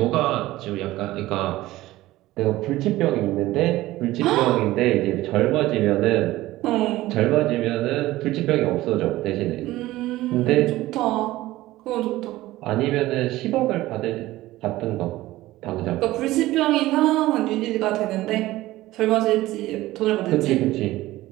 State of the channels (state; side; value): quieter; left; 17.0 dB